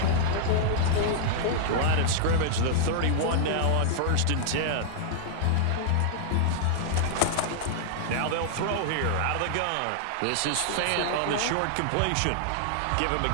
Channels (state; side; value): different; both; correlation -0.01